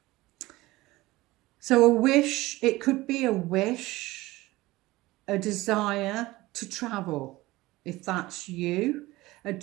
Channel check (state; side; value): quieter; left; 19.2 dB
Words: So a wish, it could be a wish, a desire to travel, if that's you. A